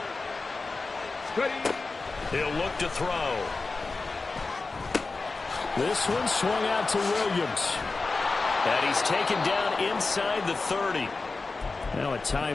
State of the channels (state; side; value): quieter; right; 3.8 dB